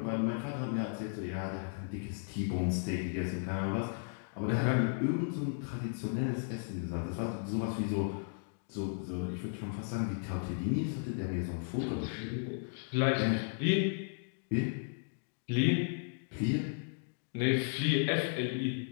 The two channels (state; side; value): silent; right; digital silence